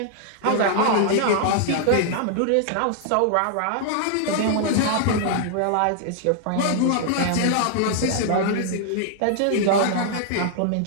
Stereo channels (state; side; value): different; both; correlation 0.00